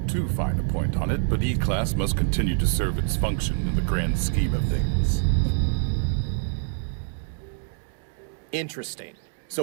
too fine a point on it, but E-Class must continue to serve its function in the grand scheme of things. Interesting.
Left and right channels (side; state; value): left; silent; digital silence